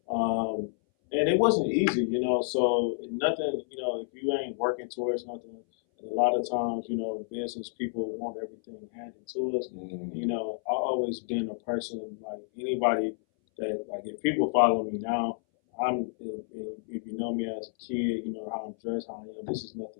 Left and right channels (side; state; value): right; silent; 58 dB below the other